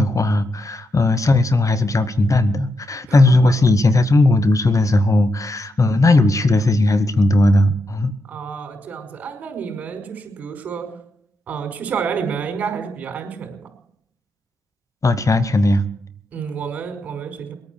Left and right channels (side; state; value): both; normal; correlation 0.84